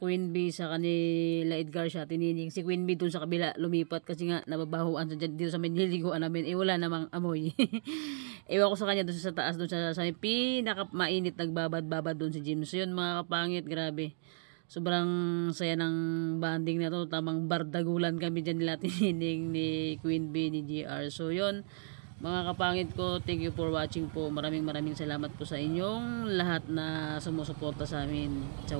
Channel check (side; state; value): left; silent; digital silence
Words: Queen B sa kanila Edgar siya tinining. Si Queen B dun sa kabila lumipat kasi nga nababahuan sa dito sa may niliguan namin. Wala namang amoy. Ewan ko sa kanya dun sa taas, dun sa pinaka mainit nagbabad-babad dun si Jim. So yun mga kapangit, grabe. Sobrang saya ng banding na to. Tamang bardagulan kami dyan nila tinining ni Queen B, ni GR. So yun mga kapangit ko, thank you for watching po. Maraming salamat po sa inyong lahat na sumusuporta sa amin sa